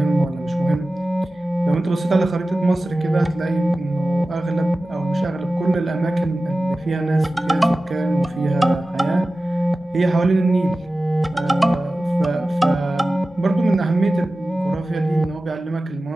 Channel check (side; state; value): both; normal; correlation 0.95